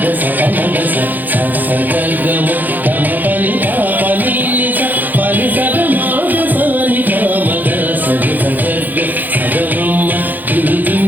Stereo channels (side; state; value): left; late; 0.085 ms